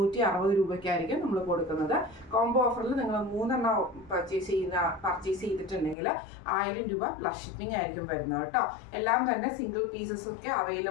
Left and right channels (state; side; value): drops out; right; at 6.0 s